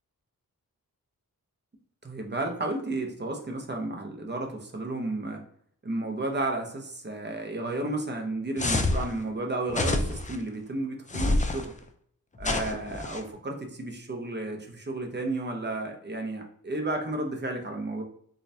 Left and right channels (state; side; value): normal; both; correlation 0.45